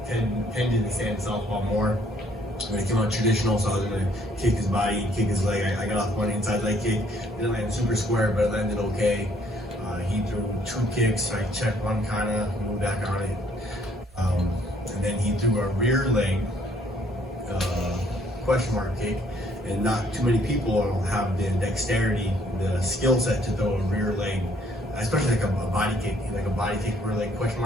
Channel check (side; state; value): both; normal; correlation 0.64